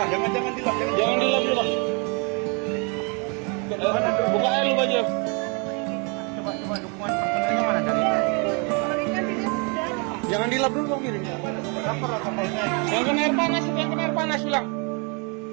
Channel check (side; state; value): left; quieter; 33.9 dB